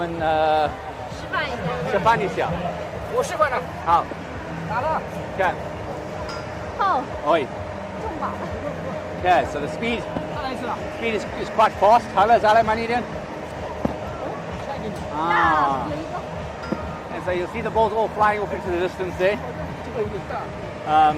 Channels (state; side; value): identical; both; correlation 1.00